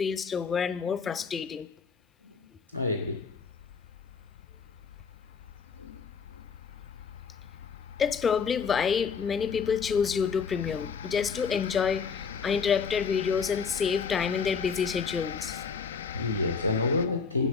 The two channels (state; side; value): quieter; right; 5.8 dB